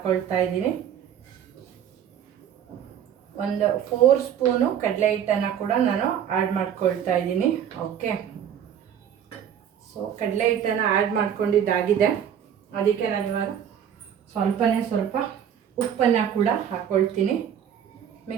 ಇದ್ದೀನಿ. ಒಂದು 4 ಸ್ಪೂನು ಕಡಲೆ ಹಿಟ್ಟನ್ನು ಕೂಡ ನಾನು ಆ್ಯಡ್ ಮಾಡ್ಕೊಳ್ತಾ ಇದ್ದೀನಿ. ಓಕೆ, ಸೊ ಕಡಲೆ ಹಿಟ್ಟನ್ನು ಆ್ಯಡ್ ಮಾಡ್ಕೊಂಡಿದ್ದಾಗಿದೆ. ಅದಕ್ಕೆ ನಾನು ಇವಾಗ ಸ್ವಲ್ಪ ಉಪ್ಪನ್ನು ಕೂಡ ಹಾಕ್ಕೊಳ್ತೀನಿ.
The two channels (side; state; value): left; quieter; 9.1 dB